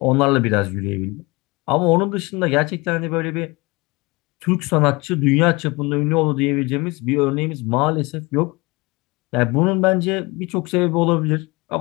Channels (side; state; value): right; quieter; 24.6 dB